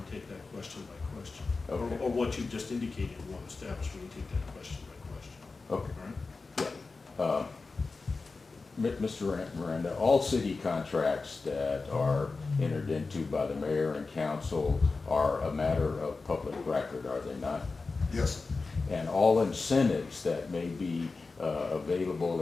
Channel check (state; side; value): quieter; right; 4.0 dB